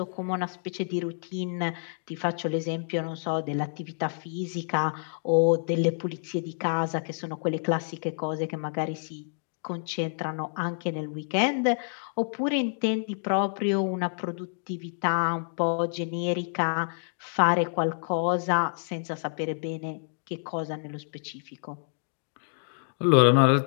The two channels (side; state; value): right; silent; digital silence